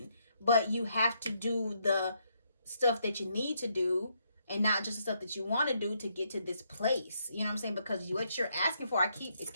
But you have to do the stuff that you need to do, and not just the stuff that you want to do to get to this place. You know what I'm saying? Because what you're asking for,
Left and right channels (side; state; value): both; inverted; correlation -0.75